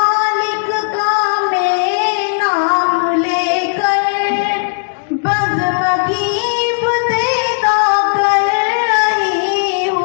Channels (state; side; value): silent; right; 70 dB below the other